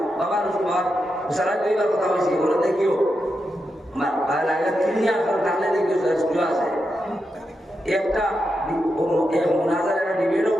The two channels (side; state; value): both; normal; correlation 0.86